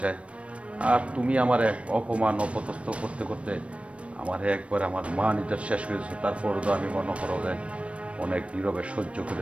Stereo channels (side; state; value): left; late; 0.062 ms